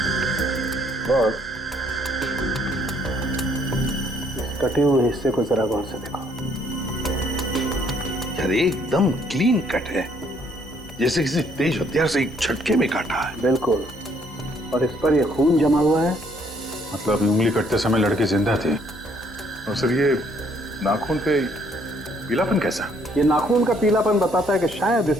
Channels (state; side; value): normal; both; correlation 0.66